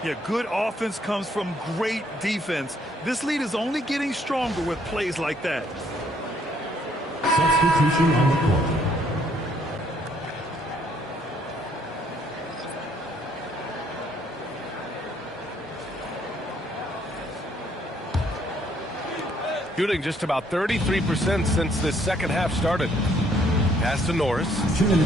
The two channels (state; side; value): normal; both; correlation 0.67